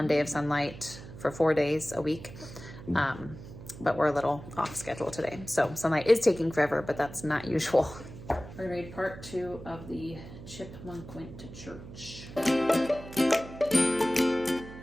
day of Sunlight for 4 days a week. But we're a little off schedule today. So Sunlight is taking forever, but that's not usual. We're gonna read part 2 of the Chipmunk Went to Church.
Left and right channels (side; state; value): right; noise; hum, 14 dB below the sound